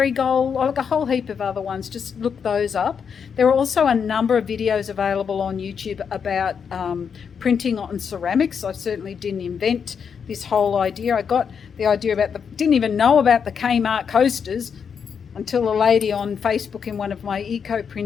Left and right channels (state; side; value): quieter; right; 6.7 dB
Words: like a whole heap of other ones. Just look those up. There are also a number of videos available on YouTube about printing on ceramics. I certainly didn't invent this whole idea. I got the idea about didn't even know about the Kmart coasters until a lady on Facebook in one of my eco